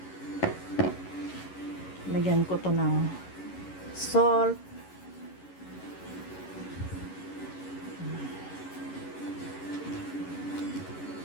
Lagyan ko to ng salt.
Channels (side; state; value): right; late; 11 ms